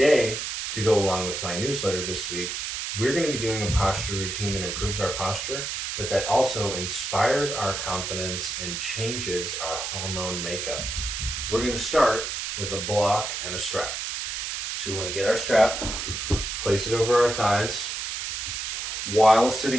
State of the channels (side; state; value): right; noise; hiss, 4 dB below the sound